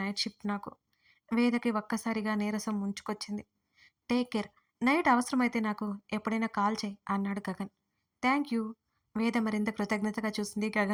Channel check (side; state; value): both; identical; correlation 1.00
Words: షిఫ్ట్ నాకు. వేదకి ఒక్కసారిగా నీరసం ముంచుకొచ్చింది. Take care. నైట్ అవసరమైతే నాకు ఎప్పుడైనా కాల్ చేయి అన్నాడు గగన్. Thank you. వేద మరింత కృతజ్ఞతగా చూసింది